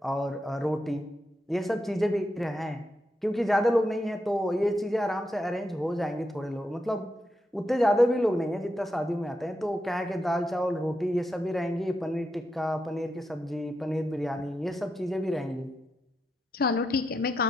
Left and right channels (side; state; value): both; normal; correlation 0.85